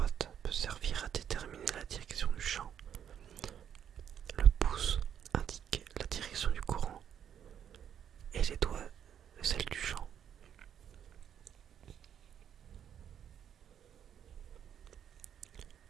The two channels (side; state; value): left; quieter; 9.0 dB